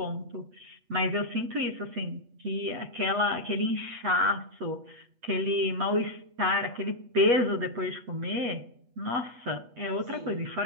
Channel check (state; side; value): late; left; 8.3 ms